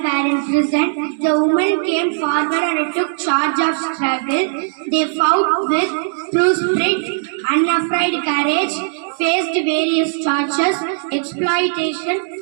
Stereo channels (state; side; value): silent; left; digital silence